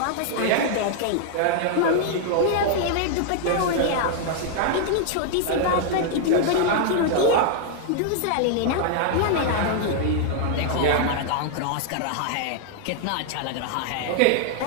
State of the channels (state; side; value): different; both; correlation 0.00